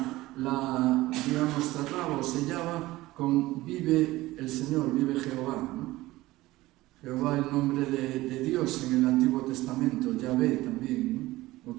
digamos, cerraba o sellaba con vive el Señor, vive Jehová, ¿no? Jehová, el nombre de Dios en el Antiguo Testamento, Yahvé también, ¿no?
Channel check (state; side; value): quieter; left; 18.1 dB